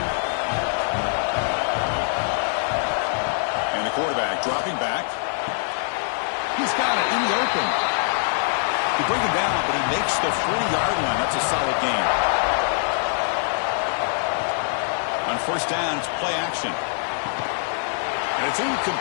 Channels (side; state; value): right; silent; 63 dB below the other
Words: Quarterback dropping back. He's got it in the open. You bring him down, but he makes the 40-yard line. That's a solid gain. On first down, it's play action. And it's